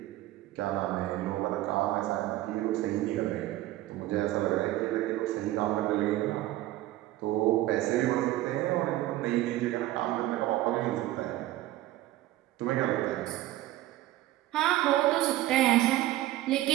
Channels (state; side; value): quieter; left; 15.5 dB